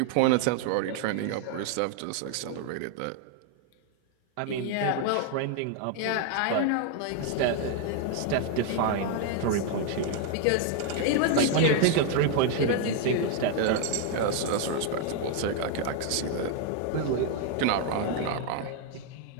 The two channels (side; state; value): both; different; correlation 0.00